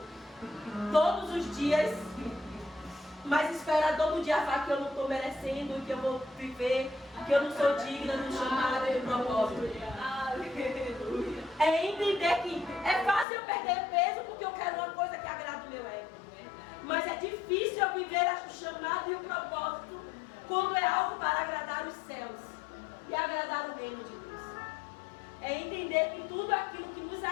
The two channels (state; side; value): drops out; right; at 13.2 s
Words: todos os dias, mas espera todo dia falar que eu não estou merecendo, que eu vou viver, que eu não sou digna do chamado e do propósito? Aleluia. É entender que é fácil eu perder peso porque eu quero uma coisa que agrada o meu ego. Mas é difícil eu viver o chamado e o propósito quando é algo para agradar os céus e agradar o reino de Deus. É entender que tudo aquilo que nos